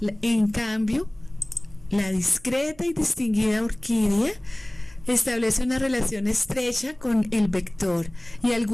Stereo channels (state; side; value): noise; right; hum, 26 dB below the sound